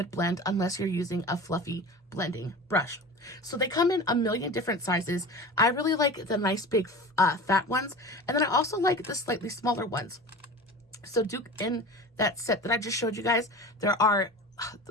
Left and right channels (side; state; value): both; normal; correlation 0.34